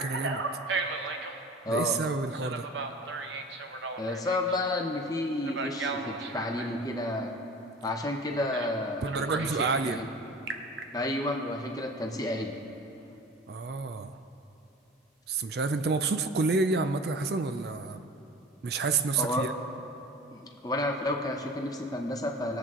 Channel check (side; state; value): both; normal; correlation 0.40